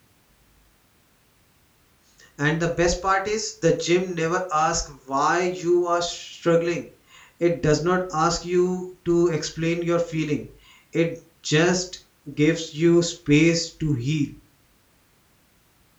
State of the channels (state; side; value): identical; both; correlation 1.00